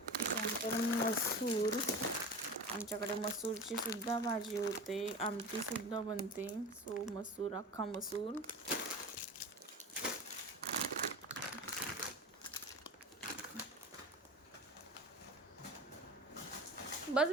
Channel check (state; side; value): normal; both; correlation 0.32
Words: त्यानंतर मसूर, आमच्याकडे मसूरची सुद्धा भाजी होते, आमटीसुद्धा बनते, सो मसूर, अख्खा मसूर. बस